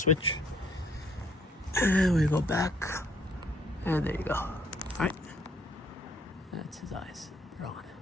And we go back, and there you go. All right, that's his eyes. They're on.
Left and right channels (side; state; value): both; normal; correlation 0.65